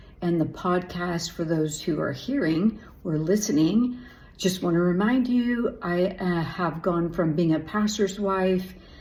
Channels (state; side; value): identical; both; correlation 1.00